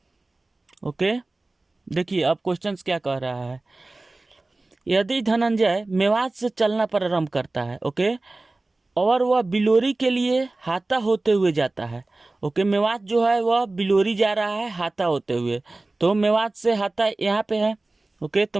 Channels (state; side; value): quieter; left; 3.1 dB